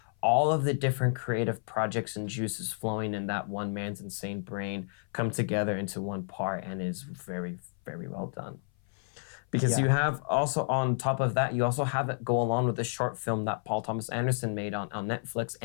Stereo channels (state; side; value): silent; right; 57 dB below the other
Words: all of the different creative projects and juices flowing in that one man's insane brain come together into one part and is very, very well done. Because you have also, on top of that, you also have it go along with the short film that Paul Thomas Anderson made on Netflix,